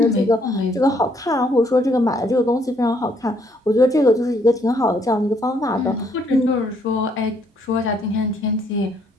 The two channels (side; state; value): both; normal; correlation 0.69